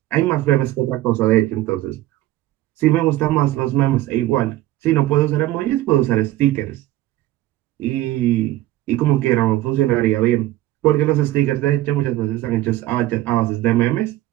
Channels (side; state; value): left; quieter; 15.5 dB